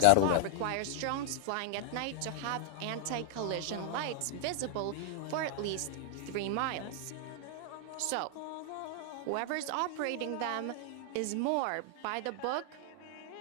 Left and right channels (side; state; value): both; different; correlation 0.00